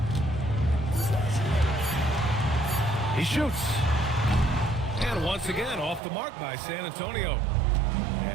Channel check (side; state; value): left; drops out; at 6.0 s